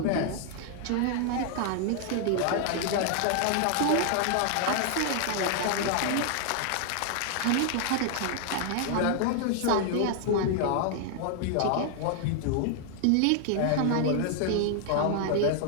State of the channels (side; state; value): both; different; correlation 0.00